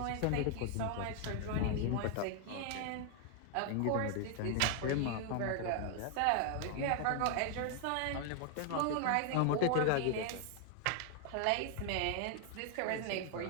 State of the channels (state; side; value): different; both; correlation 0.00